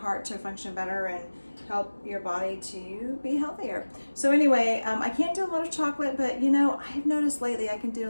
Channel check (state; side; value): inverted; both; correlation -1.00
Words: to function better and help your body to be healthier. So anyway, I can't do a lot of chocolate, but I've noticed lately I can